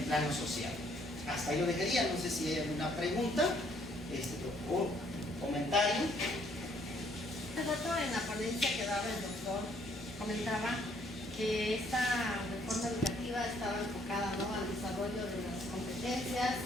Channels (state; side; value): normal; both; correlation 0.66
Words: plano social. Hasta ahí lo dejaría, no sé si hay alguna pregunta o comentario. Hace rato en la ponencia que daba el doctor comentaba que esta reforma educativa estaba enfocada, ¿no?, al desarrollo de las competencias